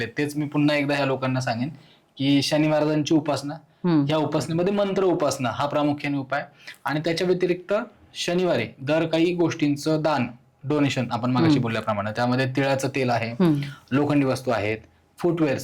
आहेत, तेच मी पुन्हा एकदा ह्या लोकांना सांगेन की शनी महाराजांची उपासना, ह्या उपासनेमध्ये मंत्र उपासना हा प्रामुख्याने उपाय, आणि त्याच्या व्यतिरिक्त शनिवारी दर काही गोष्टींचं दान, डोनेशन, आपण मागाशी बोलल्याप्रमाणे त्यामध्ये तिळाचं तेल आहे, लोखंडी वस्तू आहेत,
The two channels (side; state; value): both; identical; correlation 1.00